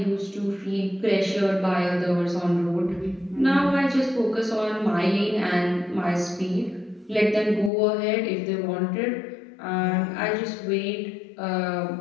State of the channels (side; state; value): right; drops out; at 7.7 s